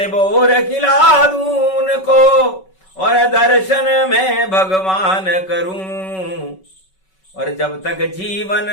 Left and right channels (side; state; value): right; late; 5.3 ms